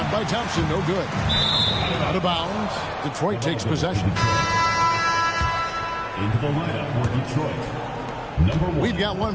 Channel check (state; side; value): identical; both; correlation 1.00